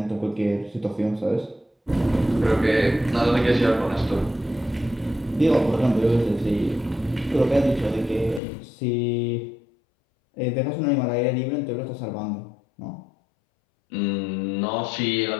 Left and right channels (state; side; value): drops out; right; at 8.4 s